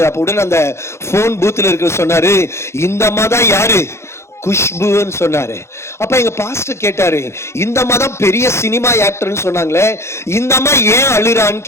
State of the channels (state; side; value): late; right; 0.13 ms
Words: அப்ப உடனே அந்த போன் பூத்துல இருக்க சொன்னாரு, இந்த அம்மா தான் யாரு, குஷ்புன்னு சொன்னாரு. அப்ப எங்க பாஸ்டர் கேட்டாரு, இந்த அம்மா தான் பெரிய சினிமா ஆக்டர்னு சொன்னாங்களே, இந்த அம்மா ஏன் அழுறான்னு